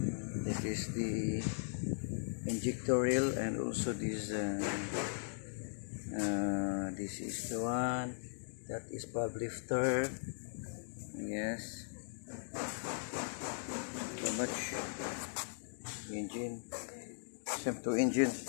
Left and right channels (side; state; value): right; silent; digital silence